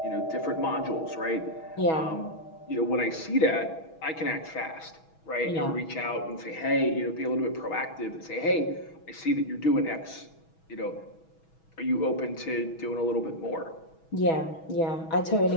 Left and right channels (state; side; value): late; right; 6.2 ms